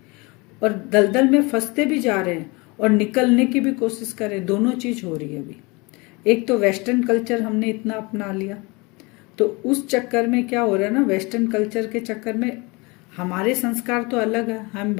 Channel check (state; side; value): quieter; right; 26.5 dB